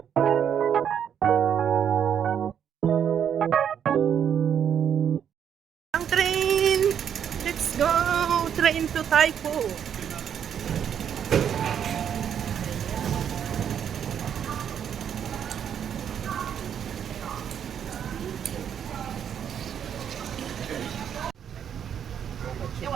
Ang train! Let's go! Train to Taipo.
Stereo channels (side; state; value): left; quieter; 8.6 dB